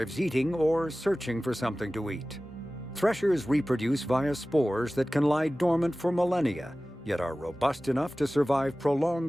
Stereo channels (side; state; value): both; normal; correlation 0.97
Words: eating or searching for something to eat. Threshers reproduce via spores that can lie dormant for millennia, yet are robust enough to survive